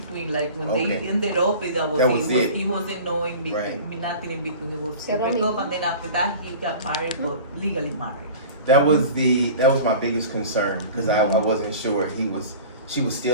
Like when Okay. they ended up, it wasn't no in between, Right. nothing in between. It was Cero break up, mismo. and then after that he got married, but legally married. That was my biggest concern because I wasn't sure she was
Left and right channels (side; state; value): both; inverted; correlation -0.39